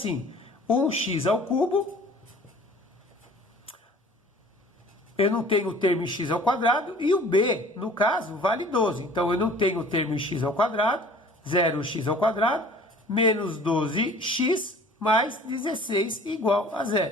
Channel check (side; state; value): both; normal; correlation 0.48